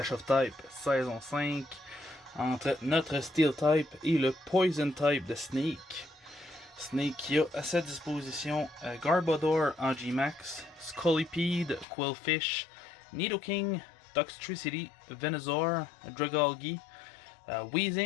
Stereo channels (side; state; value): right; drops out; at 11.9 s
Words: of Type saison 5 entre notre Steel Type et le Poison Type de Snake. Snake qui a à sa disposition Garbodor en G-Max, Scolipede, Quillfish, Nidoking, Toxtricity, Venusaur, Dragalge,